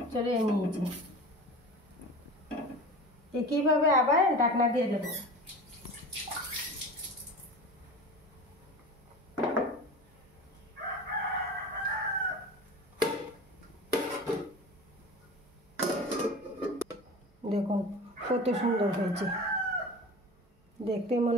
চড়িয়ে নিয়েছি। একইভাবে আবার ঢাকনা দিয়ে দেব। দেখুন কত সুন্দর হয়েছে। দেখতে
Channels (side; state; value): both; normal; correlation 0.35